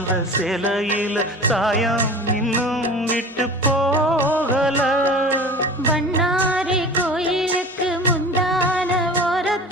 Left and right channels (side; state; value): both; normal; correlation 0.38